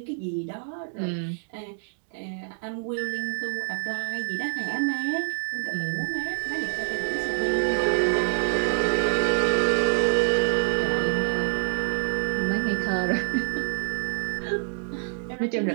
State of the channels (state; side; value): silent; left; digital silence